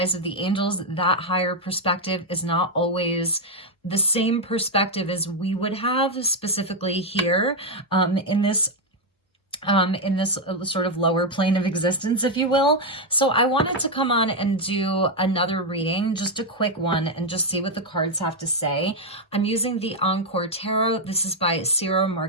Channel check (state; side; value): normal; both; correlation 0.02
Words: of the angels, that higher perspective is not always the same perspective as we would have specifically here in this sort of lower plane of existence, if you will. So I wanted to come on and do another reading, just a quick one, and just see what the cards have to say. I'm using the Encore Tarot. This is by Ciro